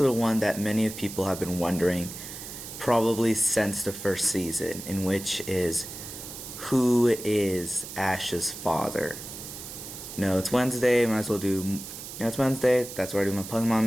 the one that many of people have been wondering probably since the first season, in which is, who is Ash's father? It's Wednesday, might as well do... it's Wednesday, that's where I do my Pokemon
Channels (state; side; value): noise; right; hiss, 11 dB below the sound